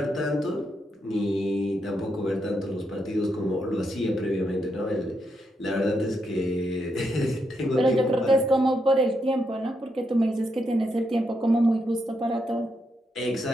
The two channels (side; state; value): both; normal; correlation 0.81